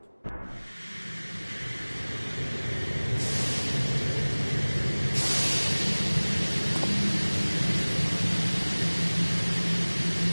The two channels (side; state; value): both; inverted; correlation -1.00